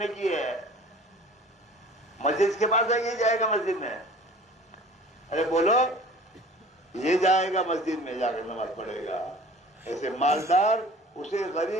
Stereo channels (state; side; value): normal; both; correlation 0.45